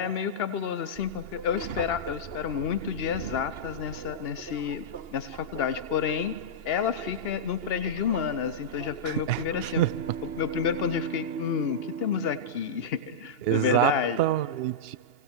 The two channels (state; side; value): late; right; 2.8 ms